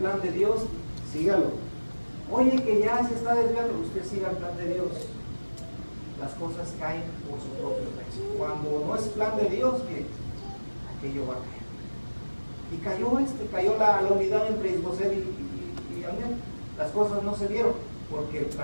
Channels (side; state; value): both; inverted; correlation -1.00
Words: de Dios, sígalo. Oye, que ya se está desviando, usted siga el plan de Dios. Las cosas caen por su propio peso. Cuando no es plan de Dios, que aquello va a caer. Y cayó la unidad entre Isboset y Abner. Las cosas no se dieron porque el